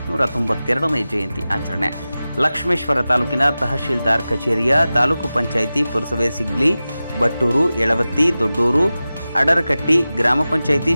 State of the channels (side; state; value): both; inverted; correlation -0.95